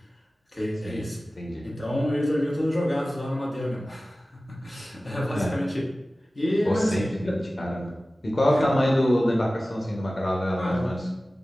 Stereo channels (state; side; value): normal; both; correlation 0.96